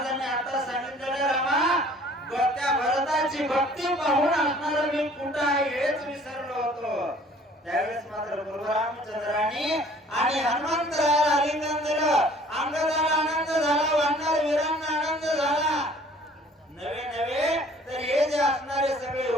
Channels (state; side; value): normal; both; correlation 0.53